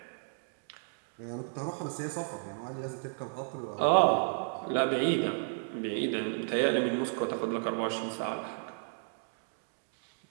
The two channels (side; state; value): left; silent; digital silence